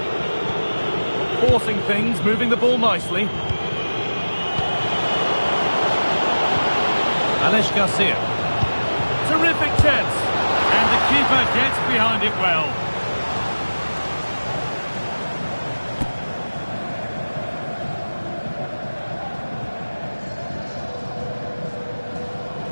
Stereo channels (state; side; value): inverted; both; correlation -1.00